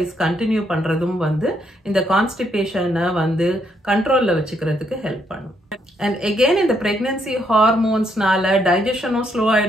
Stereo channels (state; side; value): normal; both; correlation 0.74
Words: கண்டினியூ பண்றதும் வந்து இந்த கான்ஸ்டிபேஷனை வந்து கண்ட்ரோல்ல வச்சுக்கிறதுக்கு ஹெல்ப் பண்ணும். அண்ட் எகெயின் இந்த பிரெக்னன்சி ஹார்மோன்ஸ்னால டைஜஷனும் ஸ்லோ